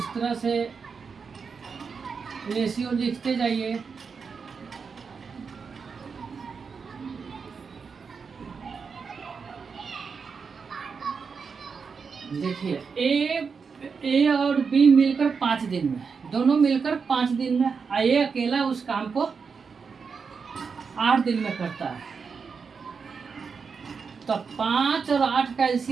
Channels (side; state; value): left; quieter; 5.5 dB